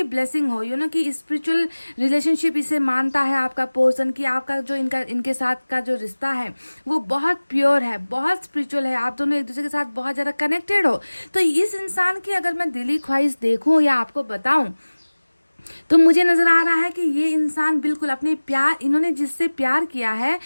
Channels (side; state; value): both; inverted; correlation -1.00